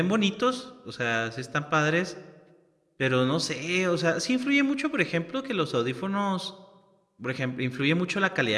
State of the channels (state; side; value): identical; both; correlation 1.00